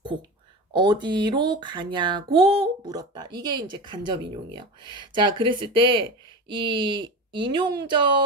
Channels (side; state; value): both; normal; correlation 0.26